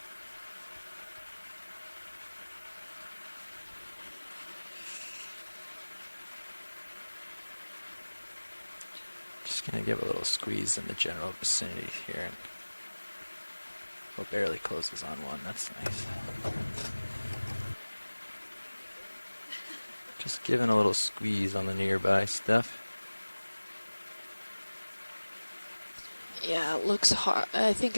Just gonna give a little squeeze in the general vicinity here. And oh, barely closes on one. That's nice. Just giving a little squeeze on the nearby stuff. yeah, it looks hard. I think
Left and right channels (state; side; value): inverted; both; correlation -1.00